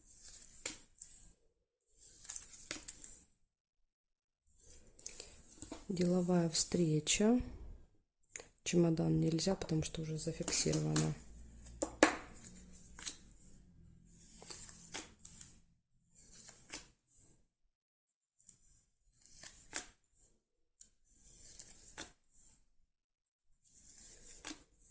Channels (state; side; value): identical; both; correlation 1.00